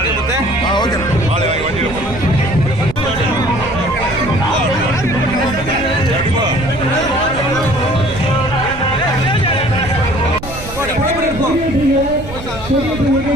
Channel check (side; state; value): right; noise; rumble, 12 dB below the sound